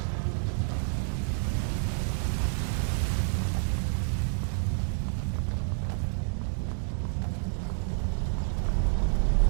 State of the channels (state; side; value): silent; left; 59 dB below the other